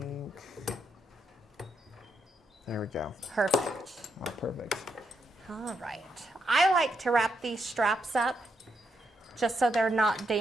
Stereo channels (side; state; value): both; normal; correlation 0.80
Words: There we go. Perfect. Oh, perfect. All right. I like to wrap these straps up just so they're not